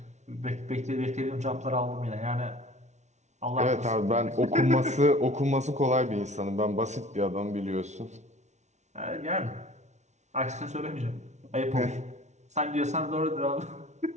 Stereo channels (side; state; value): left; late; 0.33 ms